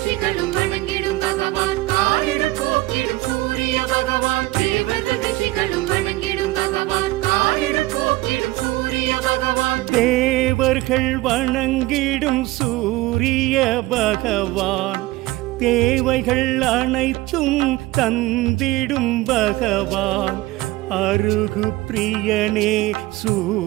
தேவர்கள் வணங்கிடும் சூரிய பகவான், தேவைகள் அனைத்தும் தந்திடும் பகவான், அருகு பிரியனே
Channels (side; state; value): left; quieter; 18.7 dB